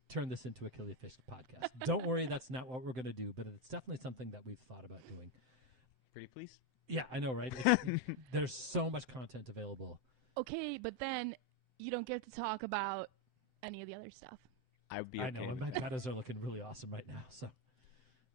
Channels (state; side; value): late; left; 7.8 ms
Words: turn this into a Killifish podcast. Don't worry, that's not what we're going to do, but it's definitely something that we've thought about doing. Pretty please? Yeah, I know, right? There's so much content available. Okay, but then you don't get to talk about any of the other stuff. I would be I okay know, and with my that. metas are looking really awesome right now. So,